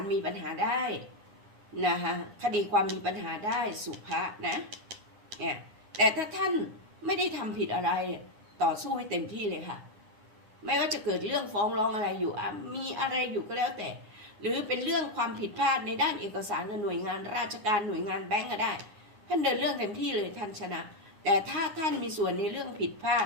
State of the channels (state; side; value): late; left; 9.9 ms